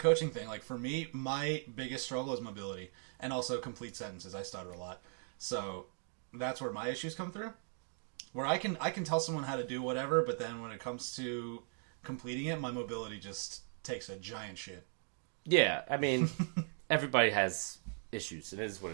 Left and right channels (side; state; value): left; silent; 52 dB below the other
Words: thing, like for me, my biggest struggle is mobility and also complete sentences. I stutter a lot. So that's where my issues come through. Where I can tell someone how to do whatever, but then when it comes to completing it, my mobility just takes a giant shit. Yeah, I mean, everybody has issues. It is what